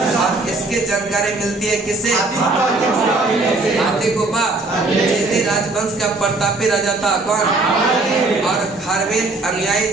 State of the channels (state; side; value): quieter; left; 3.1 dB